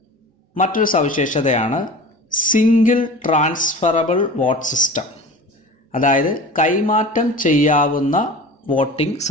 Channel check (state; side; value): normal; both; correlation 0.37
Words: മറ്റൊരു സവിശേഷതയാണ് സിംഗിൾ ട്രാൻസ്ഫറബിൾ വോട്ട് സിസ്റ്റം, അതായത് കൈമാറ്റം ചെയ്യാവുന്ന വോട്ടിംഗ്